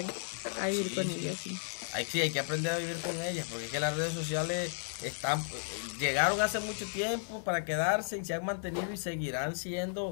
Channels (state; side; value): silent; right; digital silence